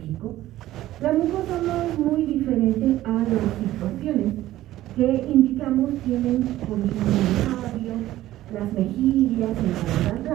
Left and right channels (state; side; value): quieter; left; 14.8 dB